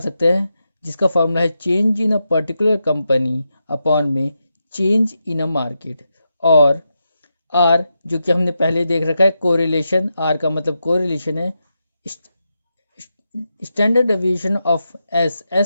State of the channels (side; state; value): both; inverted; correlation -0.87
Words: सकते हैं, जिसका फॉर्मूला है change in a particular company upon में चेंज इन अ मार्केट। और आर, जो कि हमने पहले देख रखा है कोरिलेशन, आर का मतलब कोरिलेशन है। स्टैंडर्ड डेविएशन ऑफ